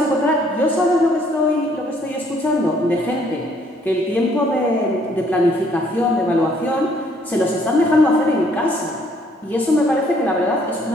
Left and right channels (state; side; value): normal; both; correlation 0.64